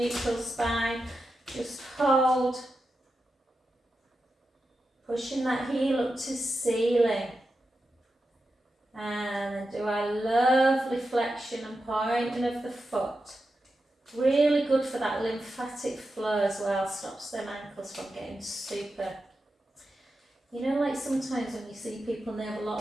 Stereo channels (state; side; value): normal; both; correlation 0.90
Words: spine. Just hold. Pushing that heel up to ceiling. And then do our lovely flexion and pointing of the foot. Really good for that lymphatic flow as well. Stops them ankles from getting super. You know, like sometimes when you see people and they have a lot